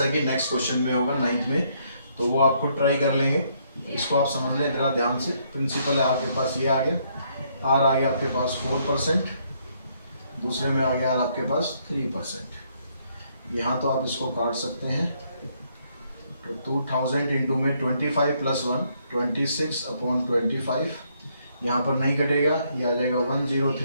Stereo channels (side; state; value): both; inverted; correlation -0.71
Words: कि नेक्स्ट क्वेश्चन में होगा 9th में, तो वो आप खुद ट्राई कर लेंगे। इसको आप समझ लें जरा ध्यान से। प्रिंसिपल है आपके पास ये आ गया, R आ गया आपके पास 4%, दूसरे में आ गया आपके पास 3%। यहाँ तो आप इसको काट सकते हैं तो 2000 इंटू में 25 + 1 26/25, यहाँ पर नहीं कटेगा, ये आ जाएगा